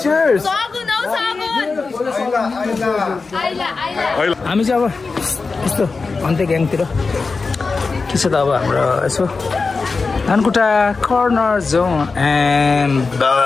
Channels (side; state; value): right; quieter; 4.3 dB